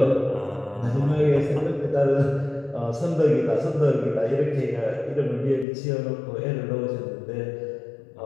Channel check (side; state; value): right; drops out; at 5.7 s